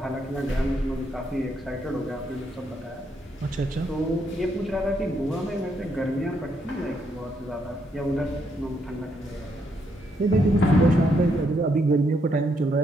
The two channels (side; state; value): both; normal; correlation 0.76